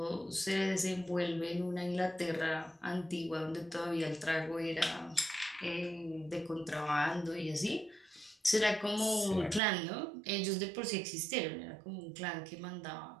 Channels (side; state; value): left; drops out; at 9.6 s